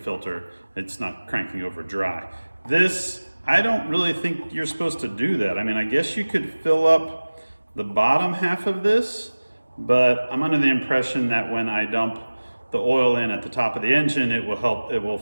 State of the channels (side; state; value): both; inverted; correlation -1.00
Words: It's not cranking over dry. This, I don't really think you're supposed to do that. I mean, I guess you could fill up the bottom half of this, but I'm under the impression that when I dump the oil in at the top of the engine, it will